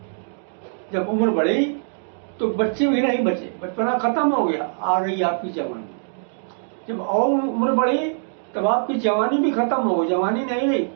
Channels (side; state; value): left; silent; digital silence